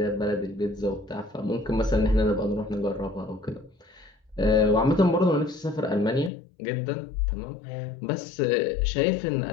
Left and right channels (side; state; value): right; drops out; at 6.3 s